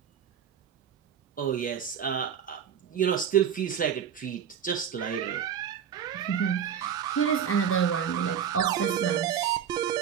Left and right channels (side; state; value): left; quieter; 8.4 dB